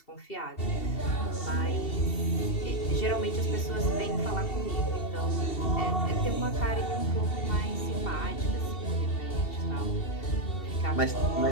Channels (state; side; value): late; right; 2.7 ms